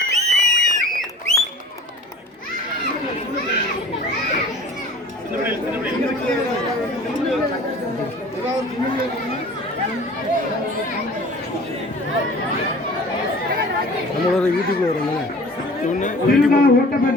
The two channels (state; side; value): normal; both; correlation 0.44